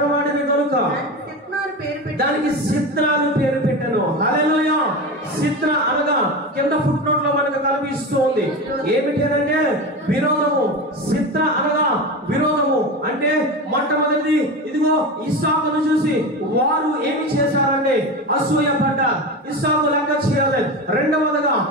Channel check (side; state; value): both; normal; correlation 0.24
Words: గనుక దానికి సిత్రాలు పేరు పెట్టాను. హల్లెలూయా. సిత్ర అనగా కింద ఫుట్ నోట్ లో మనకు కనిపిస్తూ ఉంది. ఏమిటంటే విరోధము. సిత్ర అనగా విరోధము అంటే మొట్టమొదటిది ఇదిగో ఇస్సాకును చూసి వారు ఏమి చేశారంటే అసూయ పడ్డారు, ఇస్సాకు లెక్క చేయలేదు. రెండవదిగా